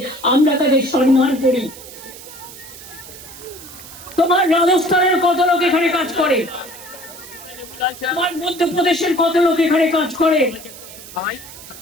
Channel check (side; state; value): right; noise; hiss, 16 dB below the sound